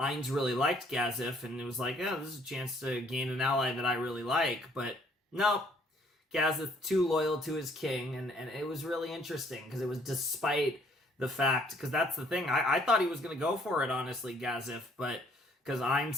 really liked Gazef, and it was like, this is a chance to gain an ally that I really like. But no, Gazef too loyal to his king, and it was really interesting, because it was despite the fact, because that's the thing, I thought he was going to go for it, honestly, Gazef, but because Ainz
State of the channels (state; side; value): normal; both; correlation 0.63